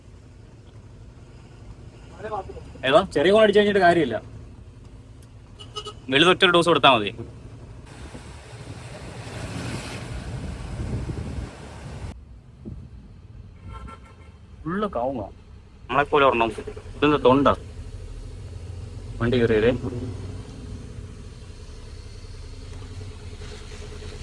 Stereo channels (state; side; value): identical; both; correlation 1.00